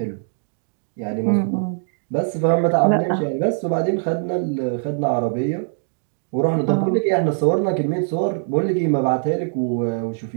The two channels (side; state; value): left; silent; digital silence